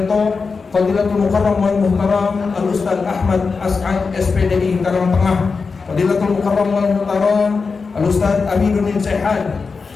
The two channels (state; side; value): quieter; right; 4.7 dB